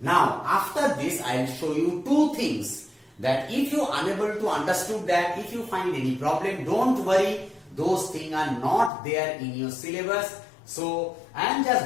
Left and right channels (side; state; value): right; drops out; at 8.9 s